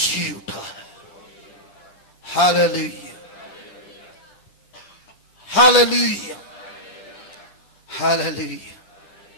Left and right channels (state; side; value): late; right; 10 ms